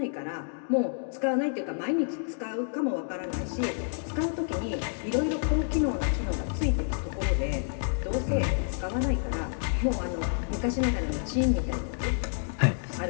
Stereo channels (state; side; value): silent; right; digital silence